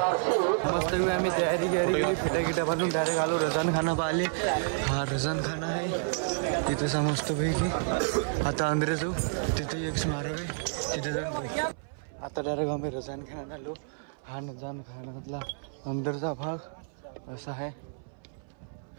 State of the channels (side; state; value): left; silent; 58 dB below the other